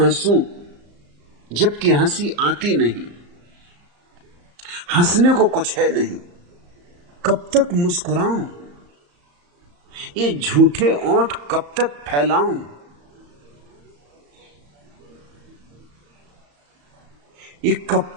जबकि हंसी आती नहीं, हंसने को कुछ है नहीं, कब तक मुस्कुराऊं, ये झूठे ओंठ कब तक फैलाऊं, ये कब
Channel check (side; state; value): left; late; 34 ms